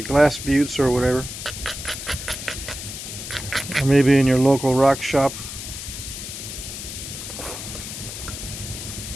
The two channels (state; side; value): noise; left; hiss, 8 dB below the sound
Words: glass buttes or whatever, or maybe in your local rock shop.